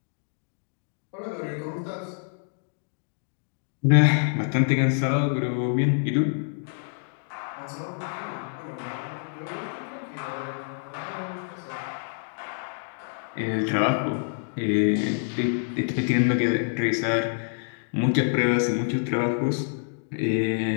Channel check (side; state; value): right; silent; digital silence